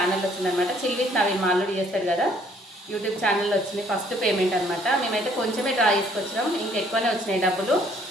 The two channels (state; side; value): normal; both; correlation 0.62